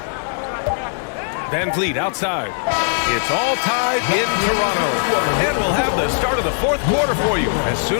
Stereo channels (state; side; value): silent; right; digital silence